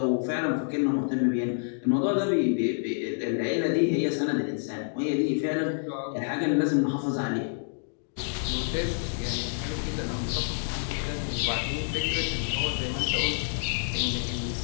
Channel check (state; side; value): silent; right; digital silence